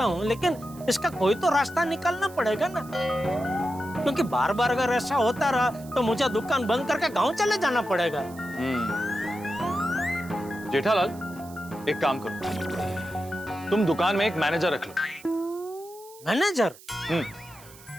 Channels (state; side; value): noise; right; hiss, 21 dB below the sound